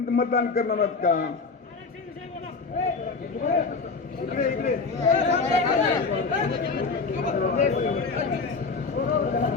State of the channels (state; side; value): quieter; right; 4.4 dB